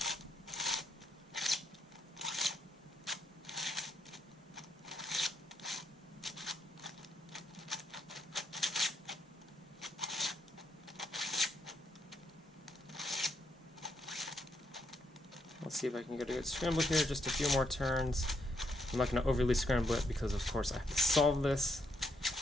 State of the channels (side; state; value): both; normal; correlation 0.77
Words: Let's see if I can get a good scramble here, just a few more turns. I'm not going to overly scramble it because of course I have to solve this.